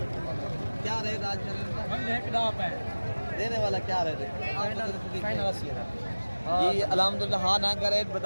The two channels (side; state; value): both; inverted; correlation -1.00